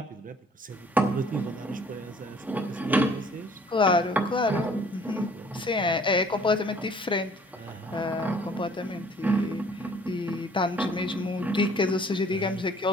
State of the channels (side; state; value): both; normal; correlation 0.56